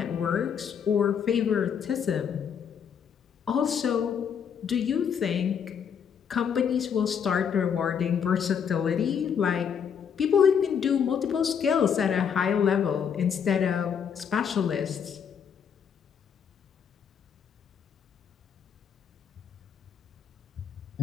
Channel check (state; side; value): quieter; right; 7.4 dB